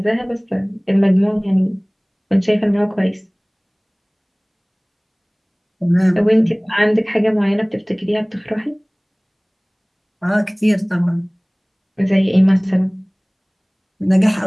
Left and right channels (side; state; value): both; identical; correlation 1.00